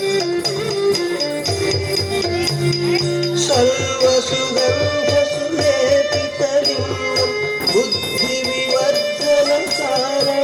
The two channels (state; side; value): identical; both; correlation 1.00